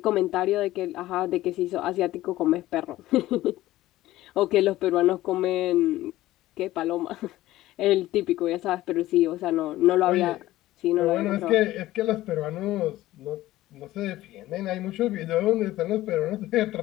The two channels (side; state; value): right; quieter; 15.9 dB